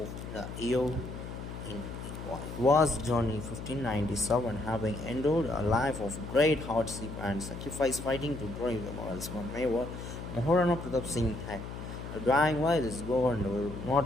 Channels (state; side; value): noise; left; hum, 9 dB below the sound